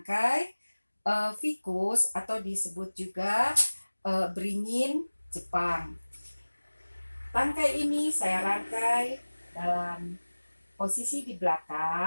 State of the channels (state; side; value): inverted; both; correlation -1.00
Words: ficus atau disebut juga beringin Jepang. Tangkai ini saya rangkai dalam posisi di